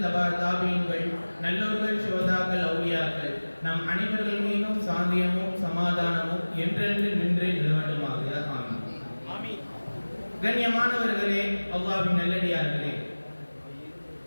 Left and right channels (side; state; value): both; inverted; correlation -1.00